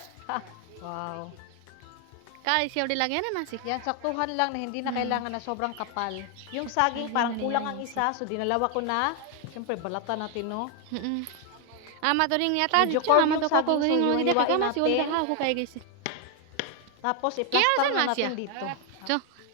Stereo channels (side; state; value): both; different; correlation 0.00